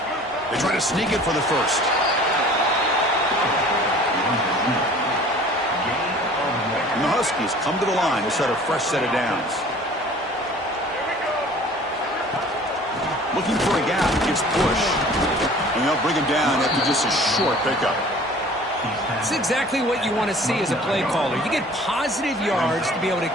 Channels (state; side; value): normal; both; correlation 0.48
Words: They try to sneak it for the first. And the Huskies come to the line to set a fresh set of downs. Looking for a gap, gets pushed. And they'll bring him down after just a short pickup. It's exactly what you want to see as a play caller. You get positive yards to be able to